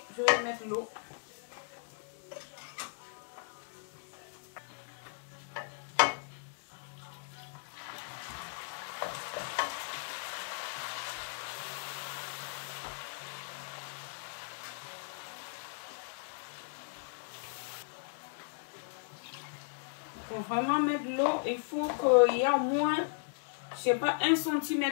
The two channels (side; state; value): right; silent; digital silence